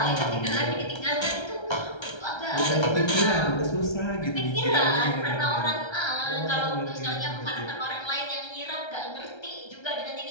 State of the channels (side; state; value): right; late; 1.3 ms